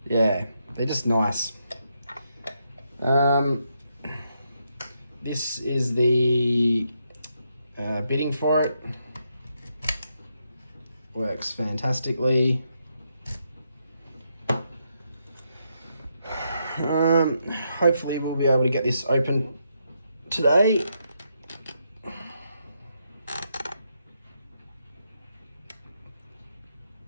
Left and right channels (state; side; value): inverted; both; correlation -0.80